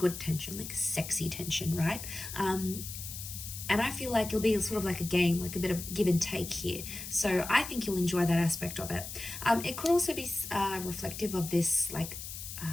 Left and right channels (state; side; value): noise; left; hiss, 9 dB below the sound